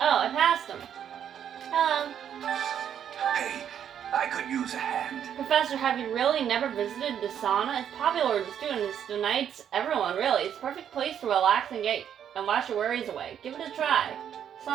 I passed him. Hello. Hey, I could use a hand. Professor, have you really never visited the sauna? It's popular with the students, the knights, everyone really. It's a perfect place to relax and wash your worries away. Give it a try.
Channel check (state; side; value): quieter; left; 9.1 dB